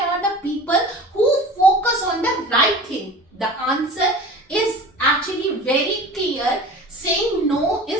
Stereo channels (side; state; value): both; normal; correlation 0.39